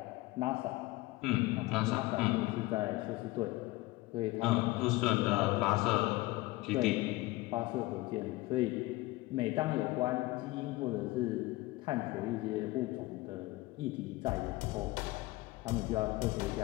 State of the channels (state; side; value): quieter; right; 20.3 dB